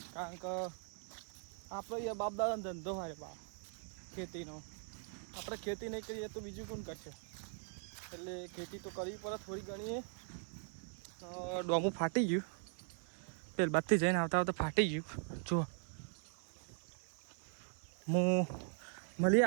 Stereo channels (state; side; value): silent; left; 51 dB below the other